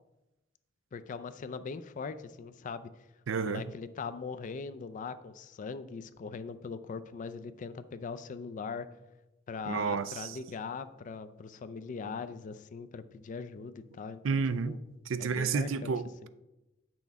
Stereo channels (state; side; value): normal; both; correlation 0.25